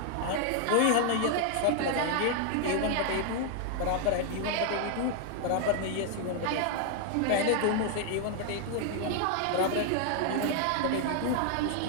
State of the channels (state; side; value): different; both; correlation 0.00